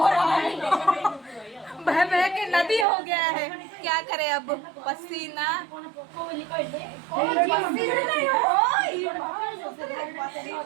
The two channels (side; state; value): left; drops out; at 2.9 s